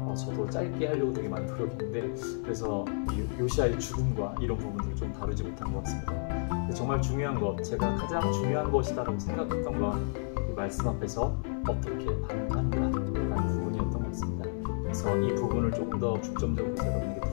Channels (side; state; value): right; silent; digital silence